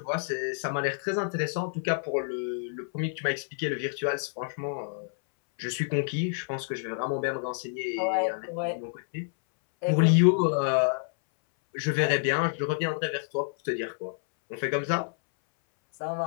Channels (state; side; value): silent; right; 59 dB below the other